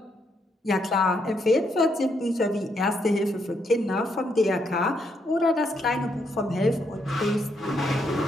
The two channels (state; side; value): normal; both; correlation 0.76